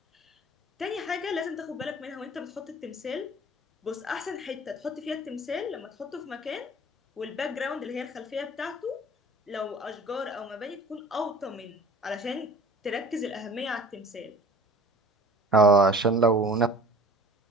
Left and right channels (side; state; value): both; normal; correlation 0.45